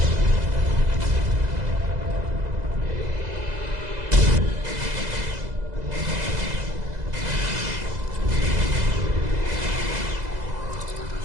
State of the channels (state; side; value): late; left; 2.0 ms